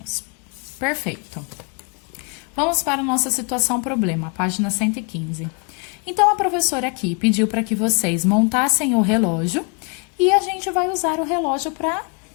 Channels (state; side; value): quieter; right; 34.7 dB